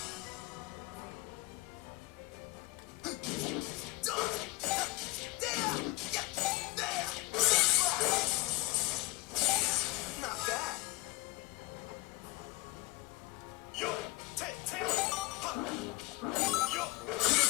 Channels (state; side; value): quieter; right; 22.4 dB